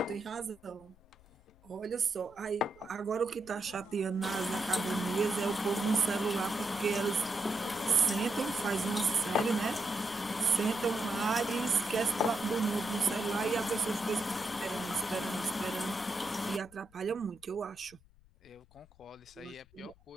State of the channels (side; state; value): left; noise; rumble, 27 dB below the sound